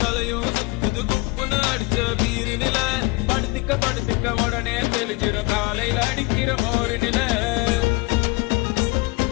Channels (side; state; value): right; quieter; 25.0 dB